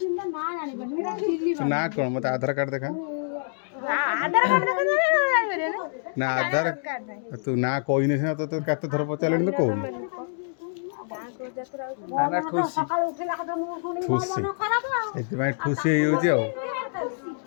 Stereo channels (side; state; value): right; silent; digital silence